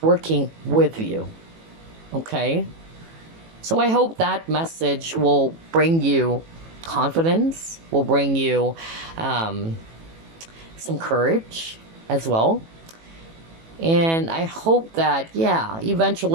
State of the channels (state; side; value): late; left; 18 ms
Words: working with you, okay? So I hope that message will bring you confidence, will bring you some courage as well. And I hope that, yeah,